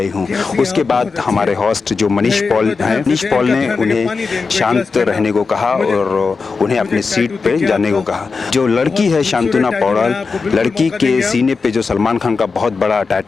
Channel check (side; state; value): right; quieter; 4.6 dB